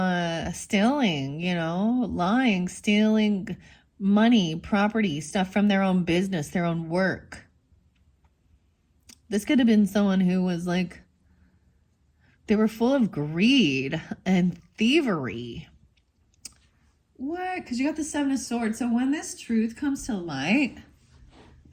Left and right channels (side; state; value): both; identical; correlation 1.00